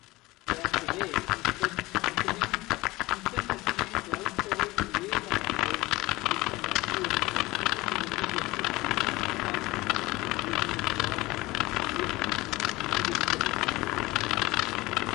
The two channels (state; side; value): quieter; right; 20.2 dB